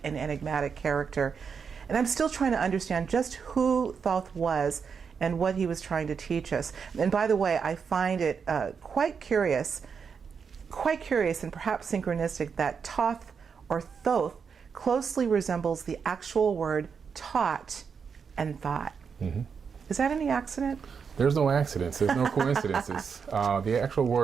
an enigmatic character. And I'm still trying to understand just who Thoth was and what he was trying to teach us. And by the way, I find it quite curious and perhaps synchronistic that Thoth or Thoth closely resembles the actual word taught and thought. Is that any accident? There's no accidents, there's no coincidences. The actual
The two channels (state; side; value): quieter; left; 6.2 dB